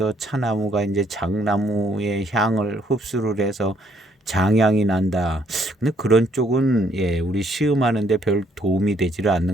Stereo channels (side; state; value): both; normal; correlation 0.68